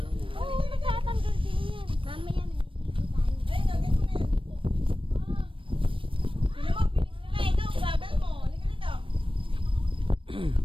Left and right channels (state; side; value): late; left; 0.25 ms